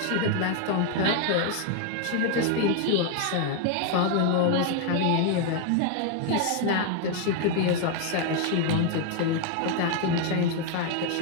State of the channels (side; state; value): both; different; correlation 0.00